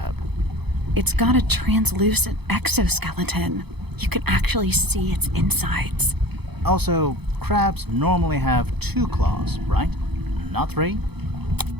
It's got a translucent exoskeleton. You can actually see its insides. Also, crabs normally have 2 claws, right? Not 3?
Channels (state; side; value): late; left; 0.98 ms